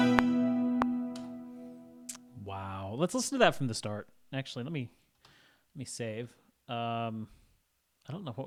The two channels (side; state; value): both; identical; correlation 1.00